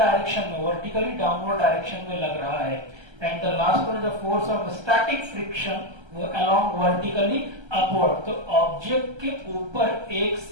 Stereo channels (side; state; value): left; late; 1.3 ms